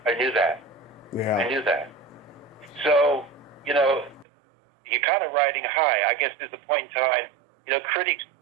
I knew that. Yeah. I knew that. So, you're kind of riding high. I guess there's a point in time,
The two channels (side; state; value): left; drops out; at 4.2 s